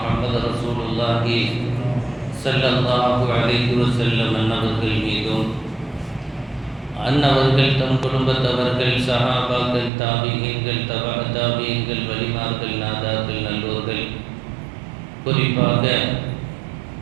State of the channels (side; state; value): left; drops out; at 9.9 s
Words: ரசூலுல்லாஹி ஸல்லல்லாஹு அலைஹி வஸல்லம் அன்னவர்கள் மீதும் அன்னவர்கள் தம் குடும்பத்தவர்கள் சஹாபாக்கள் தாபியீன்கள் தாபியீன்கள் வலிமார்கள் நாதாக்கள் நல்லோர்கள் குறிப்பாக